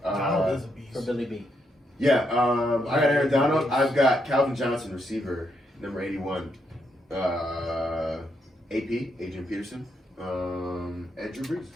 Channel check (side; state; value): both; normal; correlation 0.79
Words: Donald is a beast. for Billy B. Yeah, I got Aaron Donald. I've got Calvin Johnson, receiver, number 81. AP, Adrian Peterson, and Drew Brees.